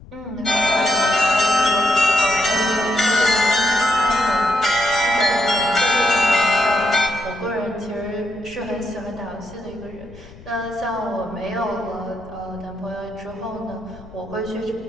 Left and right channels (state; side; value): noise; left; rumble, 20 dB below the sound